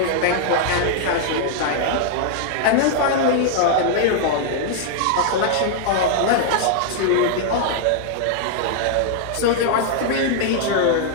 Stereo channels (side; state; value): both; different; correlation -0.01